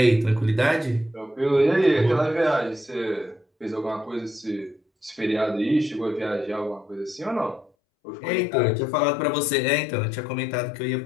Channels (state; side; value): drops out; right; at 7.7 s